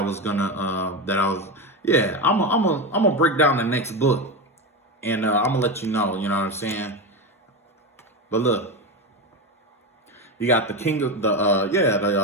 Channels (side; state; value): both; normal; correlation 0.17